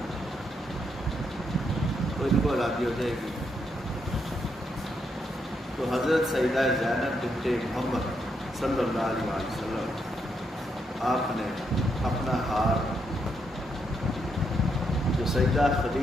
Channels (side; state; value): both; normal; correlation 0.78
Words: تو ان کو آزادی ہو جائے گی۔ تو حضرت سیدہ زینب بنت محمد صلی اللہ علیہ وسلم آپ نے اپنا ہار جو سیدہ